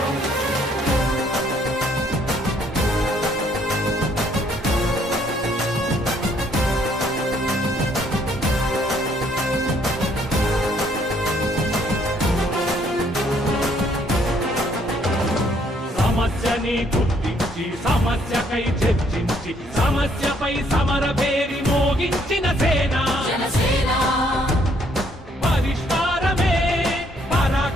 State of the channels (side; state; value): both; normal; correlation 0.66